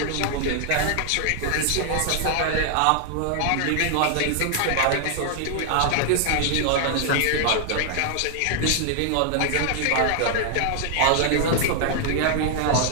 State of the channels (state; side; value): different; both; correlation 0.00